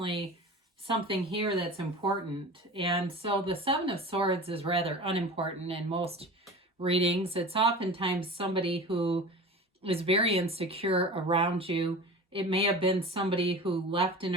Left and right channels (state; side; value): normal; both; correlation 0.35